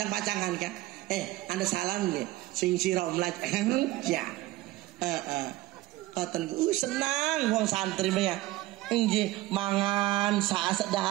kan. Anda salam nggih. Sing sira omlat. Ya. Paten senang wong santri ya. Nggih, mangan saat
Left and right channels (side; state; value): left; quieter; 17.6 dB